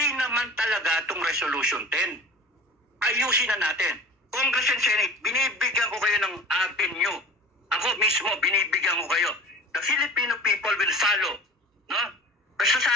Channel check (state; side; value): normal; both; correlation 0.40